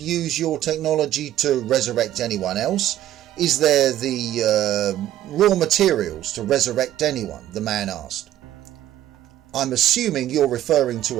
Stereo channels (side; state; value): left; quieter; 12.8 dB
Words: use your technology to resurrect anyone else? Is there the raw materials to resurrect anyone? The man asked. I'm assuming you're referring to